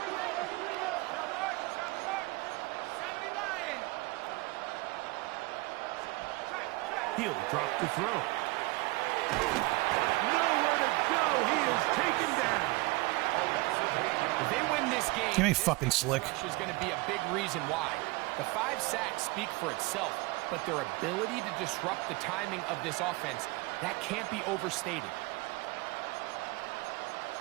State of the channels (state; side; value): quieter; left; 23.6 dB